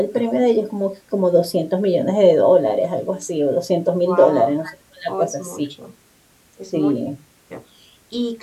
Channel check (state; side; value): identical; both; correlation 1.00